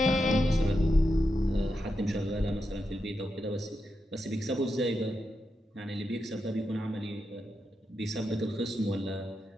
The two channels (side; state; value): both; normal; correlation 0.86